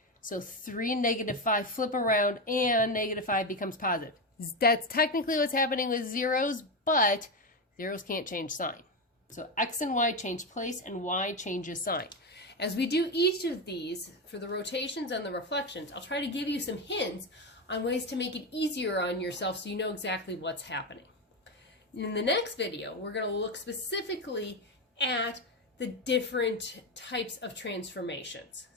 So 3 and -5 flip around and -5 becomes positive. That's technically what's happening with zeros, but zeros can't change sign. So X and Y change place and Y changes sign. As we do each of these for the rotations and the reflections, I'll try to give you some hints on ways to make it easier on yourself so you know exactly what's happening. In the next video, we're going to look specifically at the different types of transformations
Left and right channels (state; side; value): normal; both; correlation 0.13